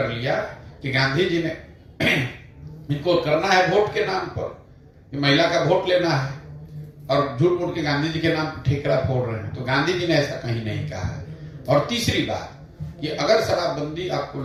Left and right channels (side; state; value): both; identical; correlation 1.00